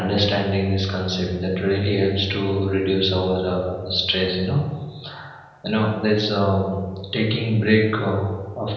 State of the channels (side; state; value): both; identical; correlation 1.00